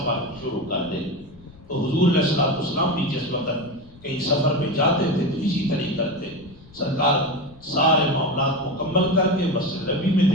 شروع کر دے۔ تو حضور علیہ السلام بھی جس وقت کہیں سفر پہ جاتے تھے تو اسی طریقے کرتے، سرکار سارے معاملات مکمل کر کے مسجد نبی میں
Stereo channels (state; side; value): noise; left; rumble, 23 dB below the sound